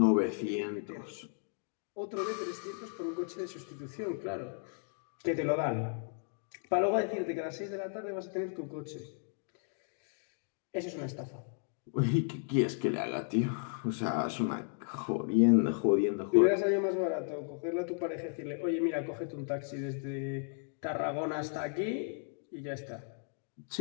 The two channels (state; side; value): silent; right; 55 dB below the other